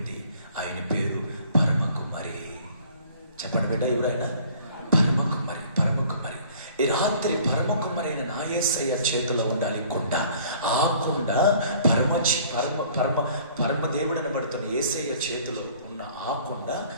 ఆయన పేరు పరమ కుమ్మరి. చెప్పండి బిడ్డ, ఎవరైనా? పరమ కుమ్మరి. పరమ కుమ్మరి. ఈ రాత్రి పరమ కుమ్మరి అయిన నా యేసయ్య చేతిలో ఉండాలి కుండ. ఆ కుండ పరమ దేవుడు అనబడుతున్న యేసయ్య చేతిలో ఉన్న ఆ కుండ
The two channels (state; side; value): inverted; both; correlation -0.53